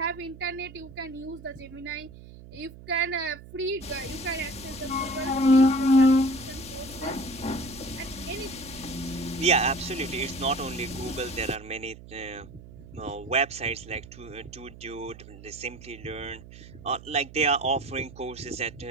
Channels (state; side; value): noise; right; hum, 17 dB below the sound